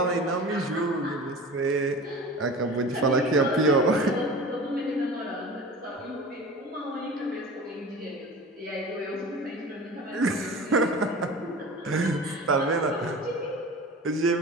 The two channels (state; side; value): normal; both; correlation 0.35